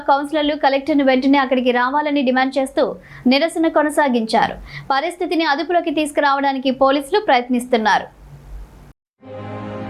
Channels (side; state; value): both; identical; correlation 1.00